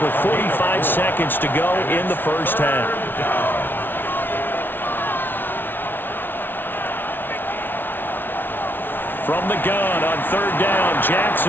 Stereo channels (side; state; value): right; late; 0.098 ms